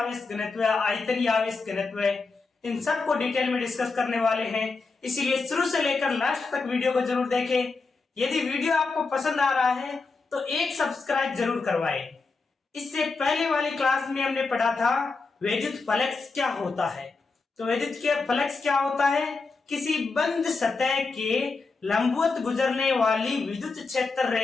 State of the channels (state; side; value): quieter; right; 4.1 dB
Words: घनत्व, आयतनीय आवेश घनत्व, इन सब को डिटेल में डिस्कस करने वाले हैं। इसीलिए शुरू से लेकर लास्ट तक वीडियो को जरूर देखें। यदि वीडियो आपको पसंद आ रहा है तो एक सब्सक्राइब जरूर करवाएं। इससे पहले वाली क्लास में हमने पढ़ा था वैद्युत फ्लक्स क्या होता है। तो वैद्युत के फ्लक्स क्या होता है? किसी बंद सतह के लंबवत गुजरने वाली विद्युत क्षेत्र